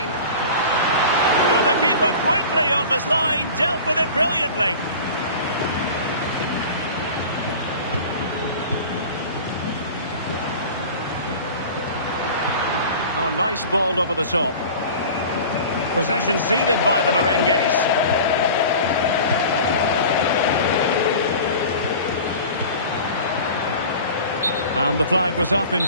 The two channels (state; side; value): inverted; both; correlation -0.38